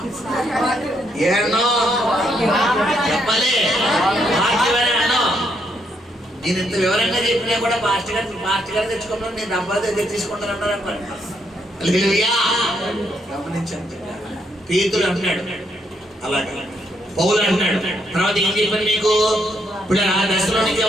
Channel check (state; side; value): normal; both; correlation 0.75